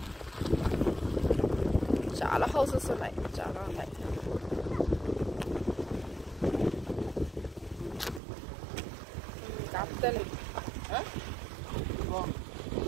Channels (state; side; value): drops out; left; at 8.2 s